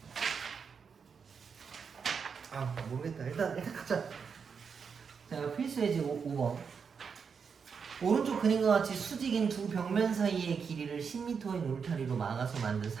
모르겠다. 일단 가자. 자, 필수 예제 5번. 오른쪽 그림과 같이 수직인 두 벽면 사이의 길이를 10m인 울타리로 막아서 만든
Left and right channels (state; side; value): quieter; left; 6.1 dB